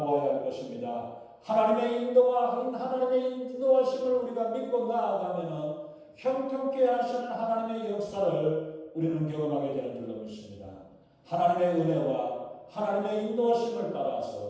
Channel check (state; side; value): identical; both; correlation 1.00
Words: 할 것입니다. 하나님의 인도하심을 우리가 믿고 나아가면 형통케 하시는 하나님의 역사를 우리는 경험하게 되는 줄로 믿습니다. 하나님의 은혜와 하나님의 인도하심을